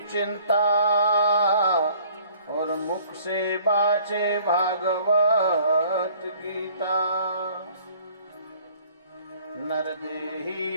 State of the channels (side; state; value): both; inverted; correlation -0.55